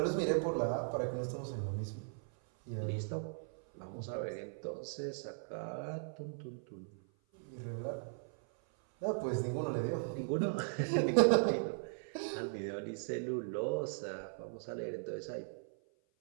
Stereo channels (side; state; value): left; silent; 52 dB below the other